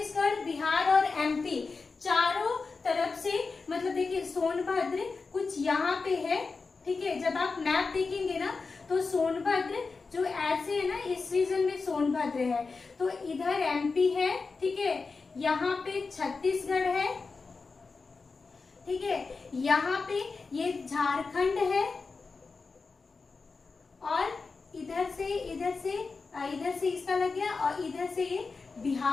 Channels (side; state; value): right; quieter; 4.4 dB